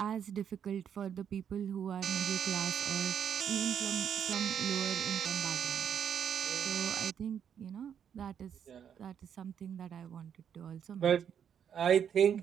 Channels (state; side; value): quieter; left; 8.4 dB